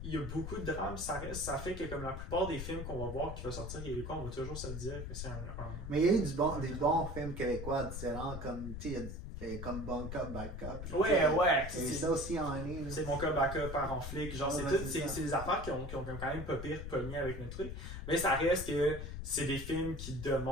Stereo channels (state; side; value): noise; left; rumble, 7 dB below the sound